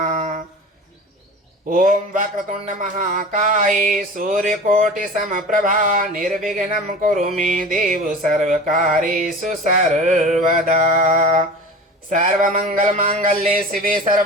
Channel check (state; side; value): normal; both; correlation 0.35